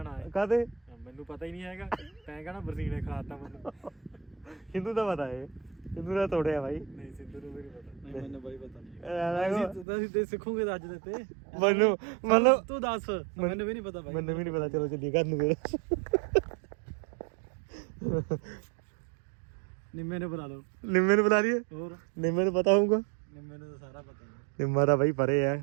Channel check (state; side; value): drops out; left; at 9.9 s